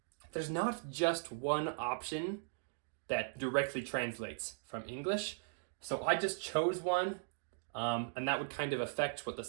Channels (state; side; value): silent; left; digital silence